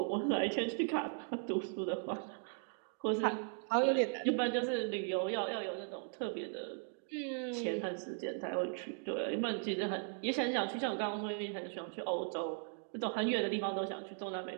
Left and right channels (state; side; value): silent; left; 53 dB below the other